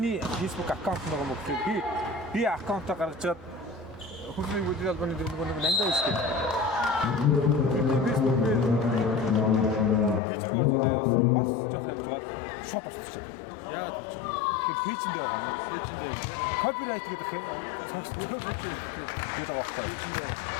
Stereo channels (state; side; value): drops out; right; at 10.2 s